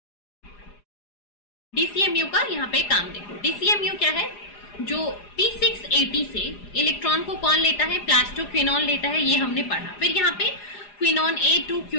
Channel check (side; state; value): right; late; 4.9 ms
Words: DCMU का यहाँ पे काम देखो. DCMU क्या है, जो P680 से इलेक्ट्रॉन को कौन लेता है, प्लास्टोक्विनोन लेता है, ये हमने पढ़ा. फिर यहाँ पे quinone A to